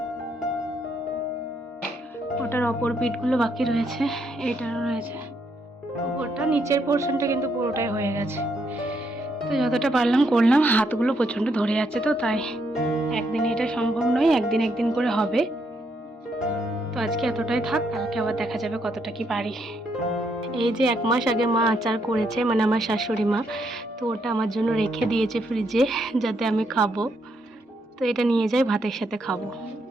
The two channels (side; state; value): both; normal; correlation 0.76